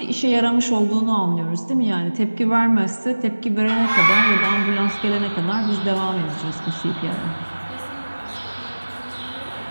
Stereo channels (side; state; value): both; inverted; correlation -1.00